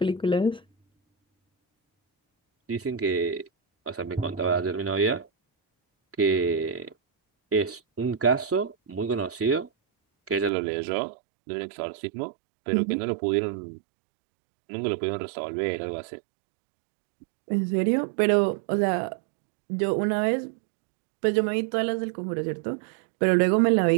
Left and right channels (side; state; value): left; drops out; at 10.5 s